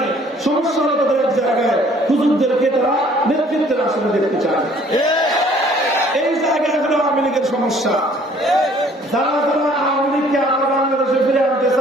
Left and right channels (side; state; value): both; normal; correlation 0.57